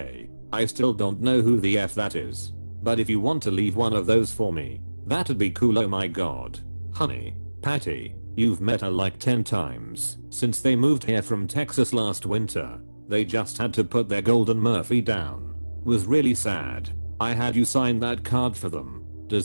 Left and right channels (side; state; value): both; inverted; correlation -1.00